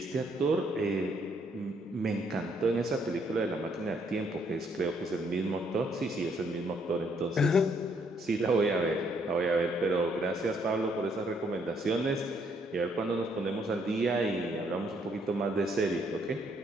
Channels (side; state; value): both; normal; correlation 0.70